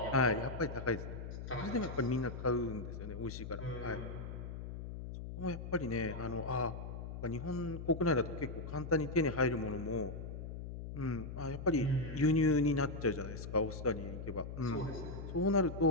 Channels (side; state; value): left; noise; hum, 8 dB below the sound